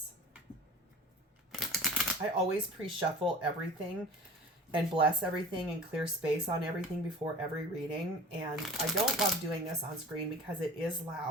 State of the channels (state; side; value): normal; both; correlation 0.41